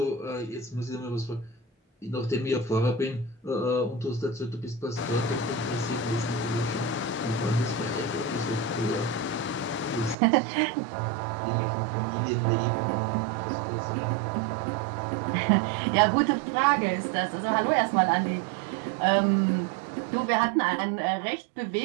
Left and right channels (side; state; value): left; drops out; at 10.2 s